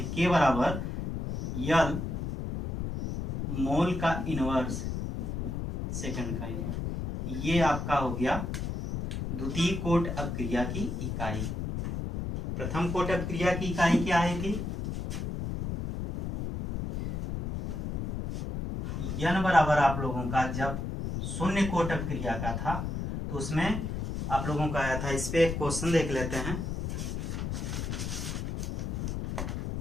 k बराबर यल मोल का इनवर्स सेकंड का इनवर्स, ये आपका हो गया द्वितीय कोट अपक्रिया की इकाई। प्रथम कोट अपक्रिया की इकाई क्या आई थी? n बराबर आप लोगों का जब शून्य कोट अपक्रिया का था तो उसमें आप लोगों का आया था। इस पे एक क्वेश्चन देख लेते हैं।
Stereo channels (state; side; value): noise; left; rumble, 3 dB below the sound